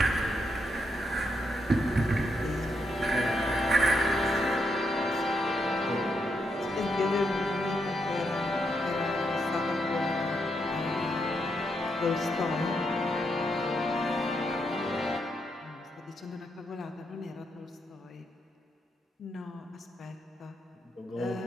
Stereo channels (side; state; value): both; normal; correlation 0.80